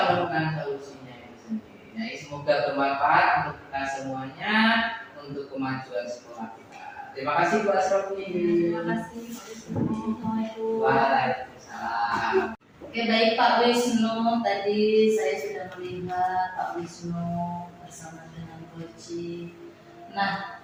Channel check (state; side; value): identical; both; correlation 1.00